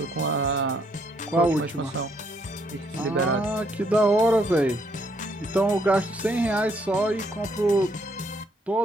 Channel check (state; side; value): normal; both; correlation 0.70